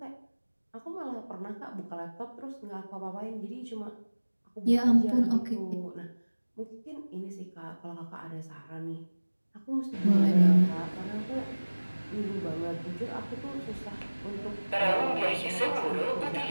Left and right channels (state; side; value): inverted; both; correlation -1.00